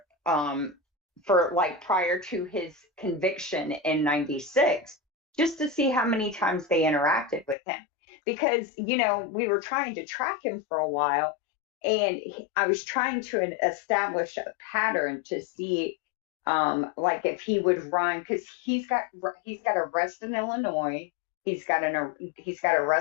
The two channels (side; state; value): right; drops out; at 7.6 s